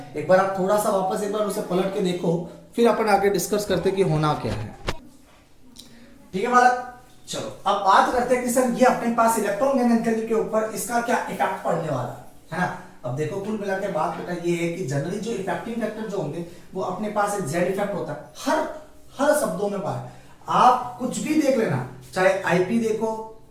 एक बार आप थोड़ा सा वापस एक बार उसे पलट के देखो, फिर अपन आगे डिस्कस करते कि होना क्या है, ठीक है बालक। चलो अब बात करते हैं कि सर ये अपने पास इलेक्ट्रॉन गैन एंथैल्पी के ऊपर इसका क्या इफेक्ट पड़ने वाला है ना। अब देखो कुल मिला के बात बेटा ये है कि जनरली जो इफेक्टिंग फैक्टर जो होंगे वो अपने पास एक जेड इफेक्ट होता है, हर शब्दों में बात, आप कुछ भी देख लेना, चाहे आईपी देखो,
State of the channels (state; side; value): identical; both; correlation 1.00